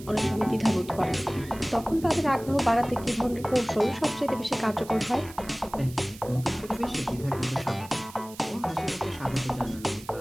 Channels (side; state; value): right; noise; hiss, 18 dB below the sound